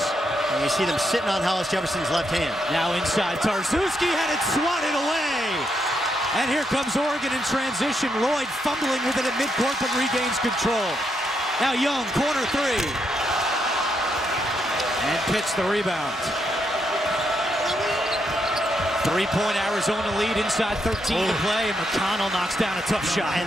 And you see them sitting on Hollis Jefferson's left hand. Now inside, Tarczewski had it swatted away. And here comes Oregon in transition. Lloyd fumbling with it at midcourt, but regains control. Now Young, corner three. And Pitts the rebound. 3-point Arizona lead, inside 13 to play, and Mcconnell knocks down a tough shot.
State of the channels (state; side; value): normal; both; correlation 0.79